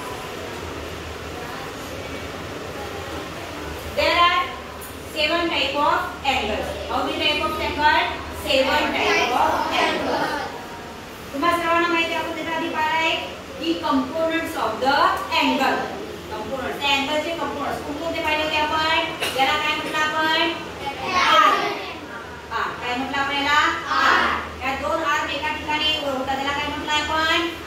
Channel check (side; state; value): both; identical; correlation 1.00